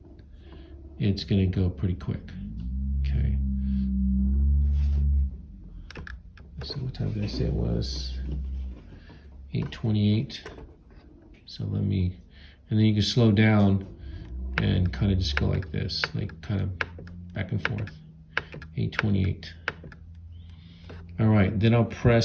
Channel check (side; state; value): both; identical; correlation 1.00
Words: it's gonna go pretty quick. Okay. So what time did I say it was? 8:28. So and then you can slow down and kind of just go like this, like kind of back and forth. 8:28. All right, then I'll